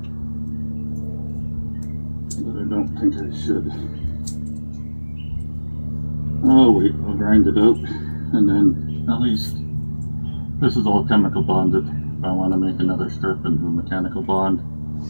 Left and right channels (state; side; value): inverted; both; correlation -1.00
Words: but I don't think I should. Oh wait, I'll grind it out, and then at least this is all chemical bonded. If I want to make another strip and do a mechanical bond